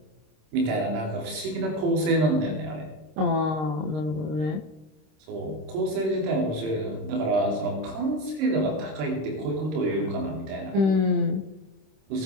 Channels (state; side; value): late; left; 26 ms